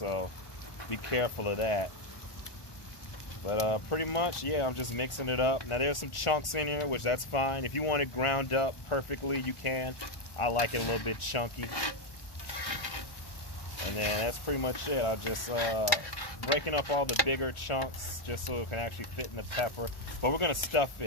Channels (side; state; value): right; late; 1.4 ms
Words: be careful of that. But pretty much, yeah, I'm just mixing it up. Now there's some chunks in here, which that's fine. If you want it ground up perfectly, you can. I like it a little bit chunky. And then that's pretty much it. I'll just breaking up all the bigger chunks just so it can actually fit in the pepper. But we're gonna stuff